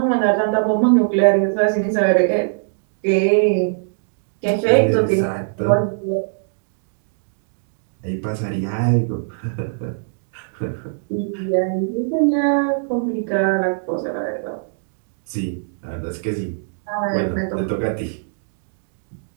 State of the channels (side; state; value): left; silent; digital silence